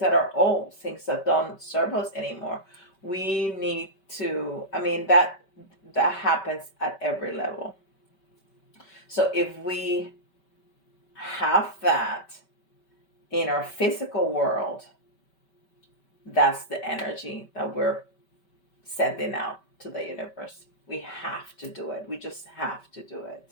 are old, things that don't serve us anymore. We need to, that happens at every level. So if we have that in our physical world, that's the energy that we're sending out to the universe. We have to do it. We just have to do it.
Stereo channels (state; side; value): late; right; 5.2 ms